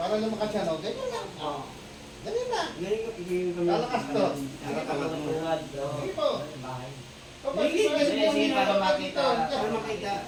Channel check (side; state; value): both; identical; correlation 1.00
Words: lang makasya, no? Ganyan lang. Ganyan na. Lalakas to. Nakatamat mo. Sige po. Bahay. Kapag Sige, Sige, para makita. Para makita.